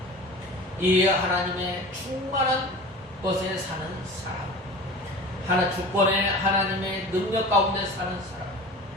이 하나님의 충만한 것에 사는 사람, 주권의 하나님의 능력 가운데 사는 사람,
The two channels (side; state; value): both; normal; correlation 0.37